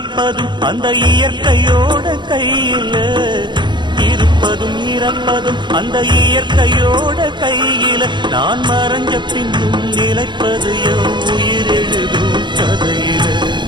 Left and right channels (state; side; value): late; left; 0.22 ms